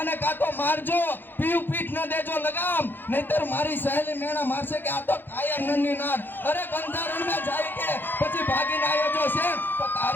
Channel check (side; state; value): right; late; 0.096 ms